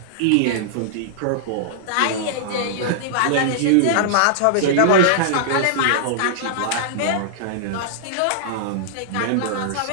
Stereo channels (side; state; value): both; different; correlation -0.02